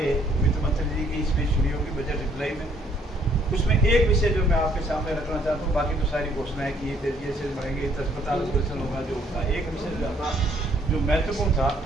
वित्त मंत्री जी की स्पीच सुनी होगी बजट रिप्लाई में, उसमें एक विषय जो मैं आपके सामने रखना चाहता हूँ, बाकी तो सारी घोषणाएं की, ये बढ़ेंगे, अस्पताल ऑपरेशन होगा जो होगा। एक विषय जो महत्वपूर्ण था,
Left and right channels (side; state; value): both; normal; correlation 0.65